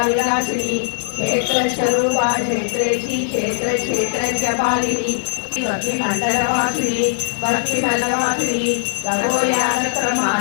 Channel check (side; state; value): right; silent; digital silence